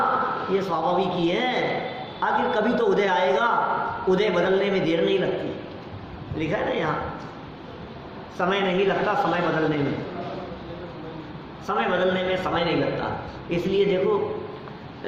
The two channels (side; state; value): both; identical; correlation 1.00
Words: ये स्वाभाविक ही है। आखिर कभी तो उदय आएगा, उदय बदलने में देर नहीं लगती, लिखा है ना यहाँ, समय नहीं लगता समय बदलने में, समय बदलने में समय नहीं लगता। इसलिए देखो